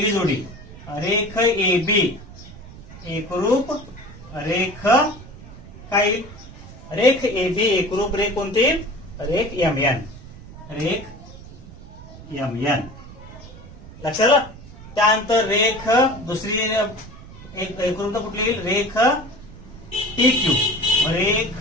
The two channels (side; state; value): right; noise; rumble, 17 dB below the sound